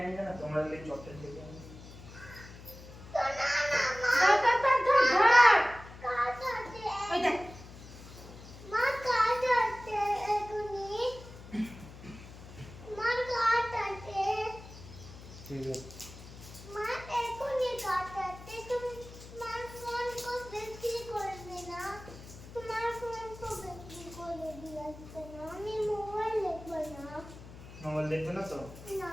आएंगे ना, তোমরা ले चॉकलेट लेके आएंगे। ठीक है, मोबाइल देखबे ना तो?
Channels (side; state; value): left; noise; hum, 16 dB below the sound